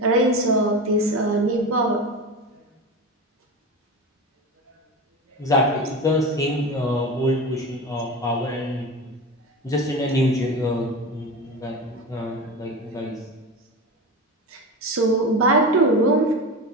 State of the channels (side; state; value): both; normal; correlation 0.26